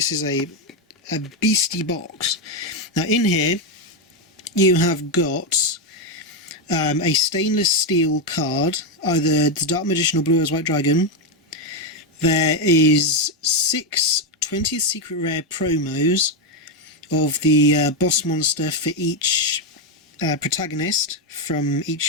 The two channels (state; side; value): normal; both; correlation 0.06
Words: is a beastie box. Now in here you have got a stainless steel card, either the Dark Magician or Blue Eyes White Dragon. There is 6 20th Secret Rare promos of the boss monster for each protagonist from